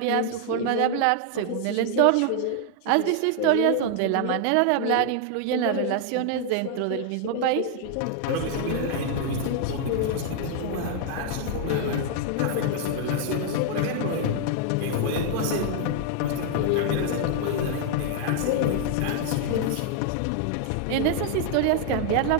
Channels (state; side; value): different; both; correlation 0.00